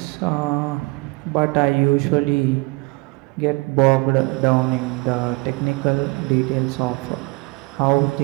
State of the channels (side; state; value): left; quieter; 27.0 dB